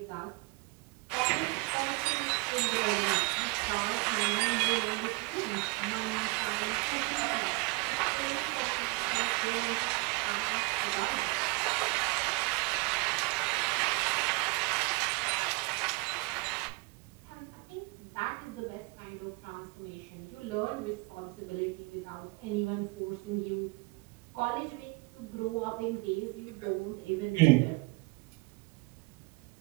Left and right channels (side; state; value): left; quieter; 27.5 dB